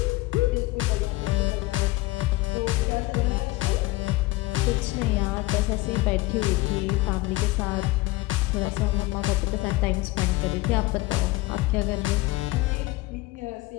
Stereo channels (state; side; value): quieter; right; 19.8 dB